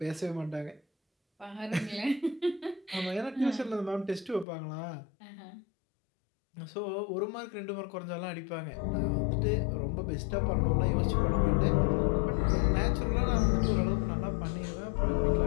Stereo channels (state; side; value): drops out; right; at 4.5 s